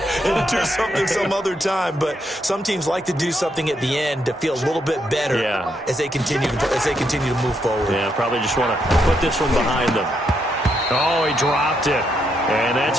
and do something some other time." But some teams like to do something at the end to feel a little bit better as they continue to move forward. Yeah, probably just want to put this one behind them. Oh, he dropped it. And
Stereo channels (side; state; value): both; normal; correlation 0.78